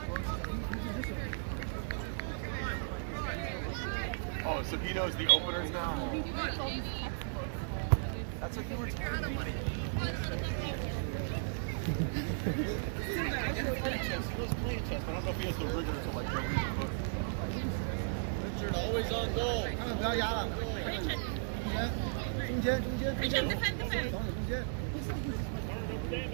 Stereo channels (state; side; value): silent; left; digital silence